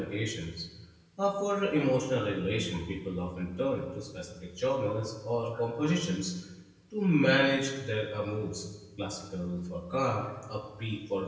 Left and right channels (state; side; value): identical; both; correlation 1.00